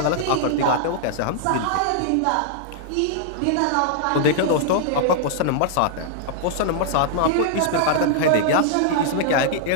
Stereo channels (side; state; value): both; different; correlation -0.01